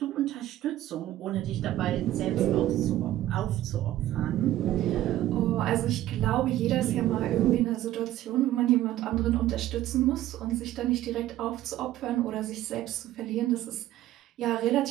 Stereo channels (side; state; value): left; quieter; 14.0 dB